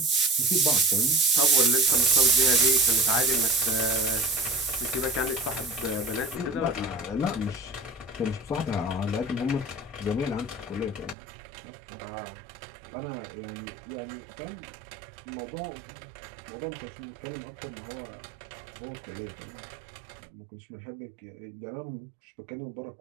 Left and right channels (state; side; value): drops out; left; at 11.2 s